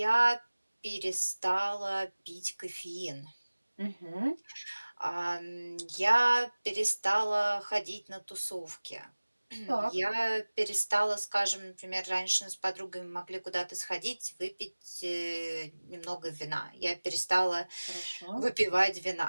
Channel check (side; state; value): both; inverted; correlation -1.00